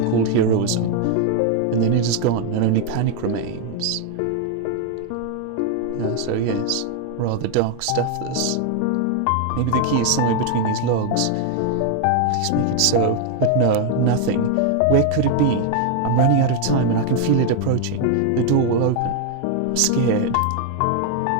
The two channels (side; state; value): both; different; correlation 0.00